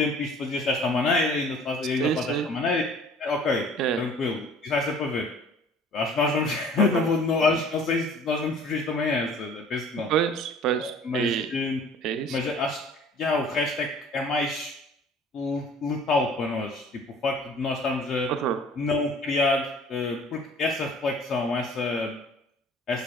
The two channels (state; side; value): normal; both; correlation 0.50